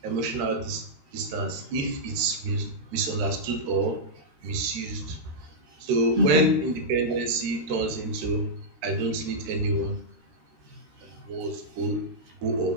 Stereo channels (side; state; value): left; late; 13 ms